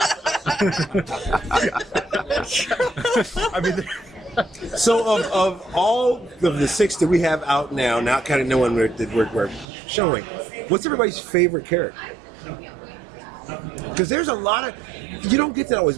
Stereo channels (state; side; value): drops out; left; at 9.7 s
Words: I mean, so of all of the 6 that we have out now kind of knowing that we're showing, what's everybody's favorite character? Because there's a lot of, you don't get that always,